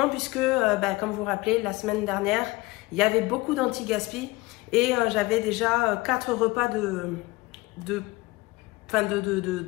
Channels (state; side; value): quieter; right; 21.7 dB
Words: puisque, comme vous vous rappelez, la semaine dernière, il y avait beaucoup d'anti-gaspi et j'avais déjà 4 repas de